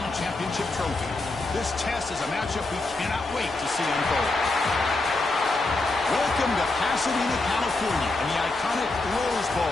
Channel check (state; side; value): quieter; right; 3.1 dB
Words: championship trophy. This test is a matchup we cannot wait to see unfold. Welcome to Pasadena, California, and the iconic Rose